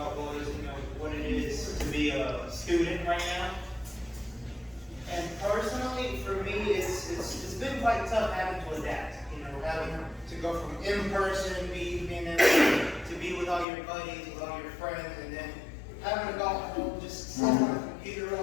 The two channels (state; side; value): drops out; right; at 13.7 s